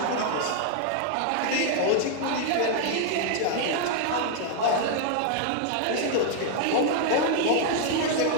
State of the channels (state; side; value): different; both; correlation 0.00